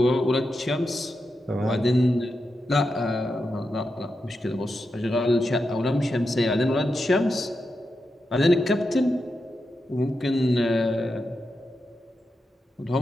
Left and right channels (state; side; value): normal; both; correlation 0.88